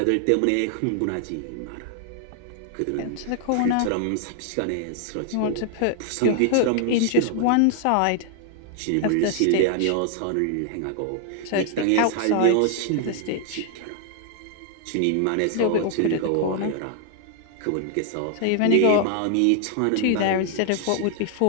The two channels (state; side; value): different; both; correlation 0.00